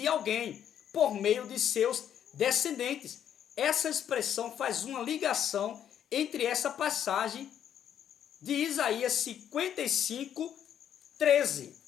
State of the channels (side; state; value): right; quieter; 9.6 dB